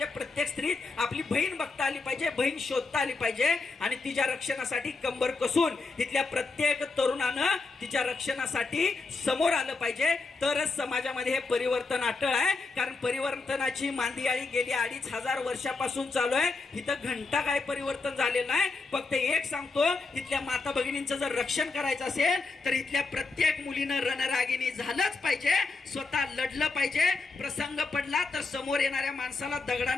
प्रत्येक स्त्रीत, आपली बहीण बघता आली पाहिजे, बहीण शोधता आली पाहिजे. आणि तिच्या रक्षणासाठी कंबर कसून इथल्या प्रत्येक तरुणानं तिच्या रक्षणासाठी समोर आलं पाहिजे. तरच समाजामध्ये हे परिवर्तन अटळ आहे. कारण परिवर्तनाची मांदियाळी गेली 2500 वर्षापासून चालू आहे. इथं घंटा काय परिवर्तन झालेलं नाही. फक्त एक सांगतो, इथल्या माता भगिनींचं जर रक्षण करायचं असेल तर इथल्या प्रत्येक मुलीनं रणरागिणी झालंच पाहिजे, स्वतः लढलं पाहिजे. प्रसंग पडला तर समोर येणाऱ्या माणसाला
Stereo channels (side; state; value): right; quieter; 3.9 dB